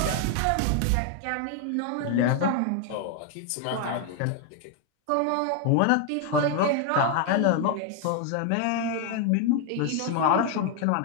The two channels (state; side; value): different; both; correlation 0.00